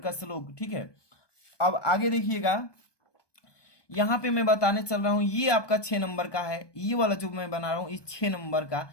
श्लोक, ठीक है। अब आगे देखिएगा, यहां पे मैं बताने चल रहा हूं, ये आपका 6 नंबर का है, ये वाला जो मैं बना रहा हूं इस 6 नंबर का,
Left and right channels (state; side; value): late; right; 1.2 ms